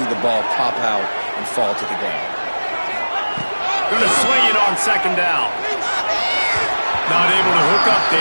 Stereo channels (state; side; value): inverted; both; correlation -1.00